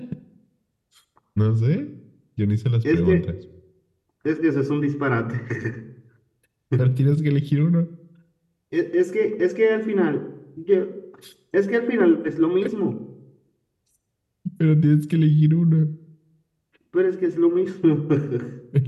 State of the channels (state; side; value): identical; both; correlation 1.00